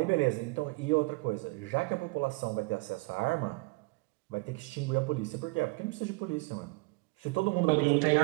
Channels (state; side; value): quieter; left; 26.5 dB